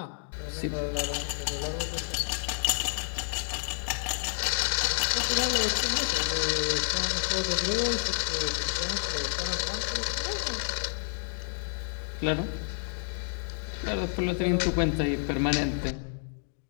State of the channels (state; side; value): silent; right; digital silence